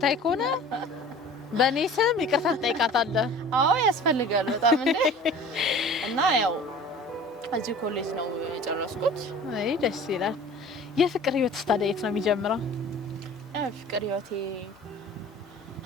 ከሆነ በኔ ስም ይቅርታ ትጠይቃታለህ። አዎ ያስፈልጋል በጣም እንዴ። እና ያው እዚህ ኮሌጅ ነው የጨረስኩት። አይ ደስ ይላል። የፍቅር ህይወት ታዲያ የት ነው የሚጀምረው? ፍቅር ህይወቴ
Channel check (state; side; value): normal; both; correlation 0.43